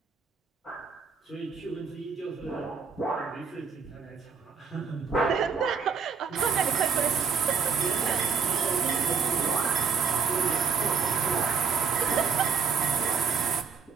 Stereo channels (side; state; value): left; quieter; 5.7 dB